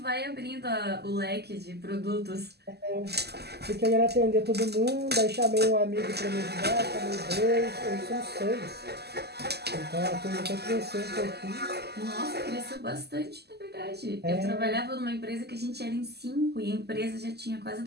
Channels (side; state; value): left; late; 0.47 ms